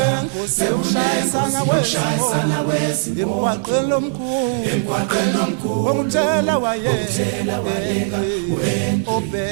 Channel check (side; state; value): left; silent; digital silence